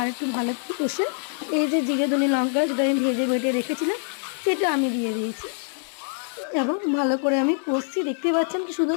একটু ভালো করে কষে এই যে জিরে ধনে লঙ্কা যেটা আমি ভেজে বেটে রেখেছিলাম সেটা আমি দিয়ে দিয়েছি এবং ভালো করে আমি কষছি। দেখতে পাচ্ছেন কি শুধু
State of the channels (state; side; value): silent; right; 62 dB below the other